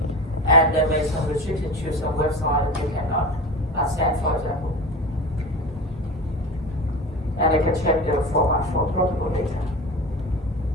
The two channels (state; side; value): normal; both; correlation 0.31